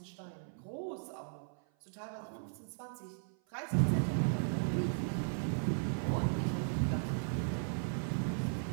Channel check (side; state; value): left; silent; 53 dB below the other